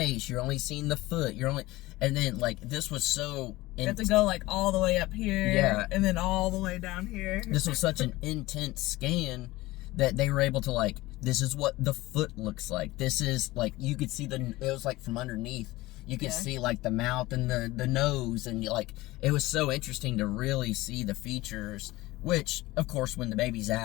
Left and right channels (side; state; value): right; quieter; 19.0 dB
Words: you're only seeing the foot, and then, like, this was so. You have to go, like, all the way up here, and then all the way down here. This was such an intense scan that they were able to, like, this is what the foot looks like. This is, like, you could see it was, like, from underneath. You could see, like, the mouth and the nose, and, like, it was so interesting to really see the features, which, of course, when the baby's